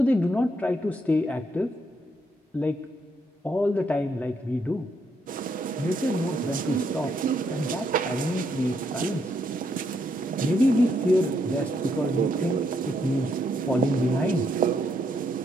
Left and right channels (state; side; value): normal; both; correlation 0.75